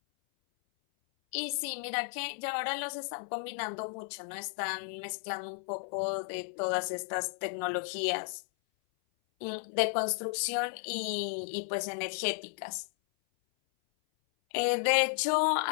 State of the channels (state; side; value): silent; right; 55 dB below the other